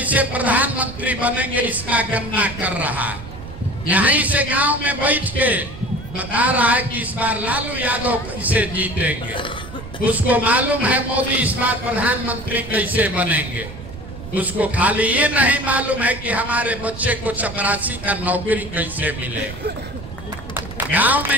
प्रधानमंत्री बनेंगे इसका गणना कर रहा है। यहीं से गांव में बैठ के बता रहा है कि इस बार लालू यादव कैसे जीतेंगे। उसको मालूम है मोदी इस बार प्रधानमंत्री कैसे बनेंगे। उसको खाली ये नहीं मालूम है कि हमारे बच्चे को चपरासी का नौकरी कैसे मिलेगा। गांव में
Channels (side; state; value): right; noise; rumble, 13 dB below the sound